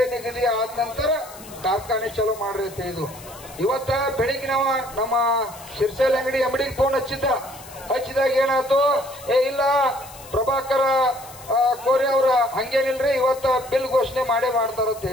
ನಿಗದಿ ಆದ ನಂತರ ಕಾರ್ಖಾನೆ ಚಲೋ ಮಾಡ್ರಿ ಅಂತ ಹೇಳಿದ್ವು. ಇವತ್ತ ಬೆಳಿಗ್ಗೆ ನಾವು ನಮ್ಮ ಶಿರ್ಸೇಲ್ ಅಂಗಡಿ MDಗೆ ಫೋನ್ ಹಚ್ಚಿದಾಗ ಏನಾಯ್ತು, ಇಲ್ಲ ಪ್ರಭಾಕರ ಕೋರೆ ಅವ್ರ ಹಂಗೇನಿಲ್ರಿ, ಇವತ್ತ ಬಿಲ್ ಘೋಷಣೆ ಮಾಡ್ತಾರ ಅಂತ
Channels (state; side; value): noise; left; hiss, 18 dB below the sound